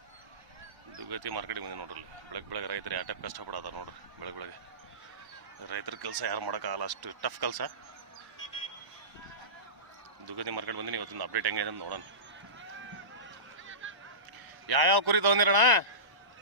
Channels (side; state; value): left; late; 1.0 ms